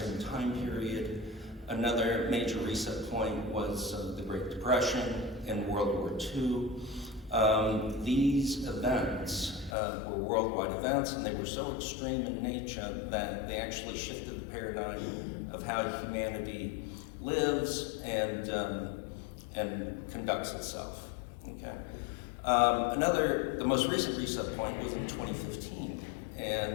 time period. Another major reset point was the Great Depression and World War II. These events were worldwide events, and they were so extreme in nature that they actually shifted the paradigm of how humanity lives and conducts itself. Okay. The most recent reset point was in 2015,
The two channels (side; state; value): right; drops out; at 9.8 s